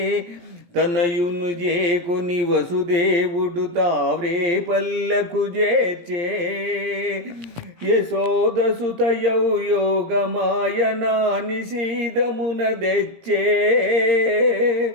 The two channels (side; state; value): left; late; 17 ms